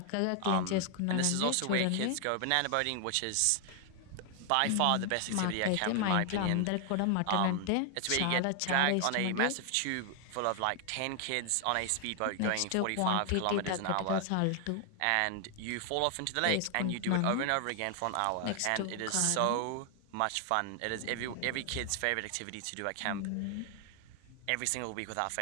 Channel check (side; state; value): both; different; correlation 0.00